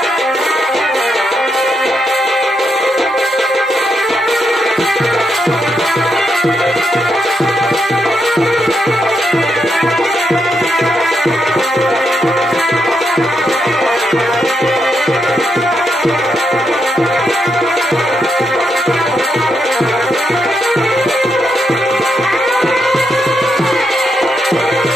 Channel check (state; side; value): normal; both; correlation 0.81